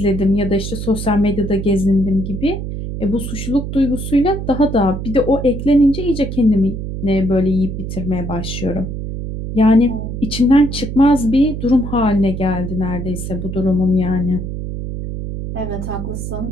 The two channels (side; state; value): right; noise; hum, 6 dB below the sound